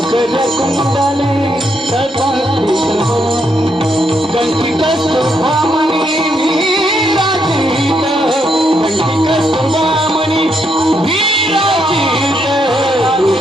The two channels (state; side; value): normal; both; correlation 0.77